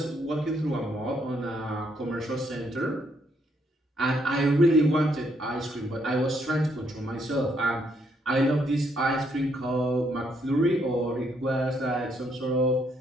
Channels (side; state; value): both; normal; correlation 0.73